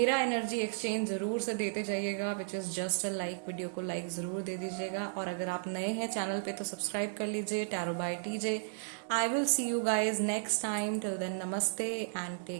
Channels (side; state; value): left; silent; digital silence